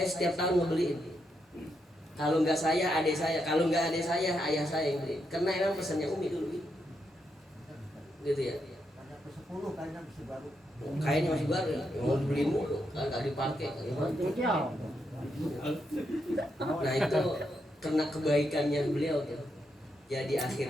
setiap tahun ngebeliin. Kalau nggak saya, adik saya. Kalau nggak adik saya, ayah saya yang beli. Karena emang pesannya Umi dulu gitu ya. Kainnya masih baru ya. Mau dibeliin mulu, nggak dipakai. Nah itu karena kebaikannya beliau tuh. Jadi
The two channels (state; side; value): normal; both; correlation 0.81